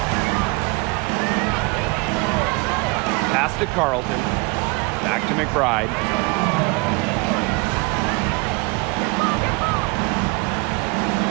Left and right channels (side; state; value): left; quieter; 26.2 dB